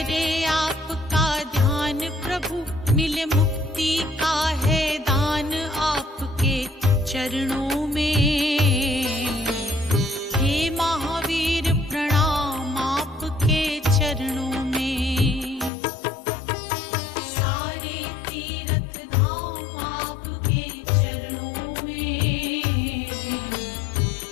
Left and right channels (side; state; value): right; drops out; at 15.7 s